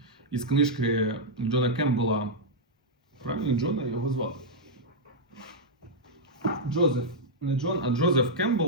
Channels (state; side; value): normal; both; correlation -0.06